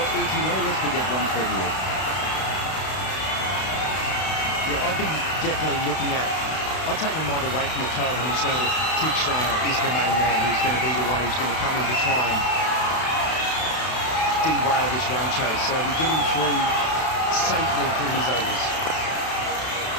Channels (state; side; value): late; right; 32 ms